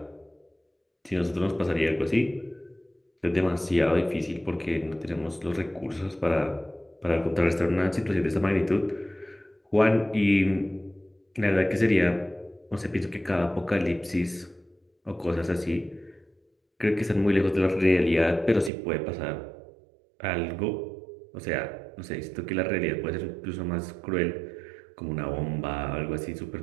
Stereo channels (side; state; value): left; drops out; at 18.7 s